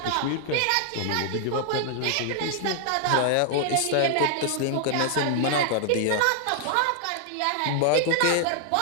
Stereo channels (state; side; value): different; both; correlation -0.01